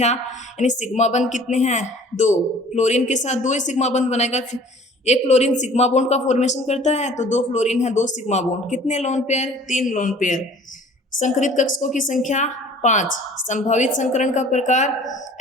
यानी सिग्मा बंध कितने हैं? 2। फ्लोरीन के साथ 2 ही सिग्मा बंध बनेगा। 1 फ्लोरीन सिग्मा बॉन्ड का फॉर्मेशन करता है तो 2 फ्लोरीन है 2 सिग्मा बॉन्ड। कितने लोन पेयर? 3 lone pair. संकरित कक्षकों की संख्या 5। संभावित संकरण का प्रकार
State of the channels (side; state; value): both; normal; correlation 0.50